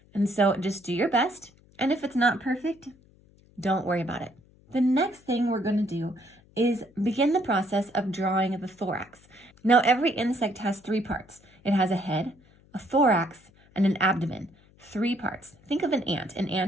And so just do your best, and if it's not perfect, don't worry about it. The next thing we're going to do is begin the process of drawing the thorax. Now, every insect has 3 parts. It has a head, a thorax, and an abdomen. 3 parts. Think of an ant. An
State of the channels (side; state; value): left; noise; hum, 29 dB below the sound